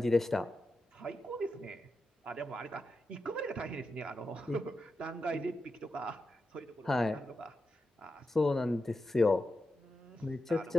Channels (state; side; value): normal; both; correlation 0.89